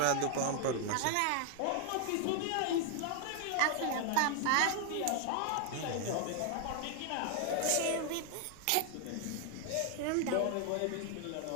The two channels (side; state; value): both; different; correlation 0.00